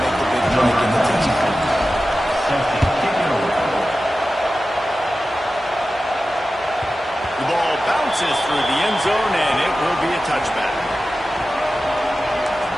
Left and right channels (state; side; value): normal; both; correlation 0.94